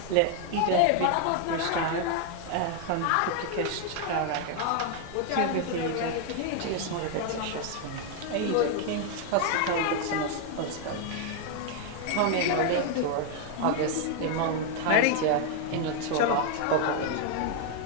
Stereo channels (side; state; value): both; different; correlation 0.00